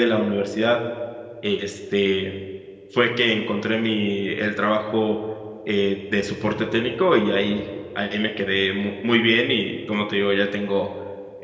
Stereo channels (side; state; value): both; identical; correlation 1.00